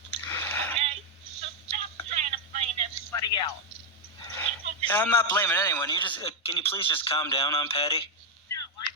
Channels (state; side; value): normal; both; correlation 0.01